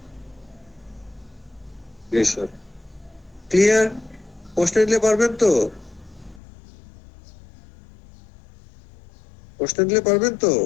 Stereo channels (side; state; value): right; drops out; at 6.4 s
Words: ক্লিয়ার? প্রশ্ন দিলে পারবেন তো? প্রশ্ন দিলে পারবেন তো?